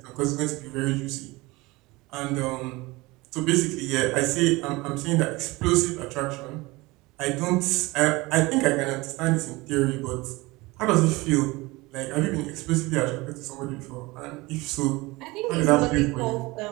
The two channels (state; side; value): quieter; left; 22.2 dB